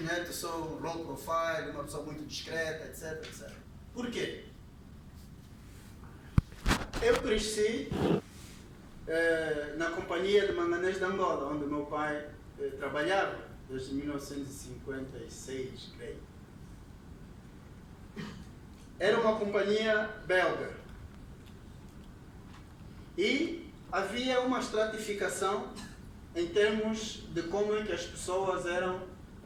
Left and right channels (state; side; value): identical; both; correlation 1.00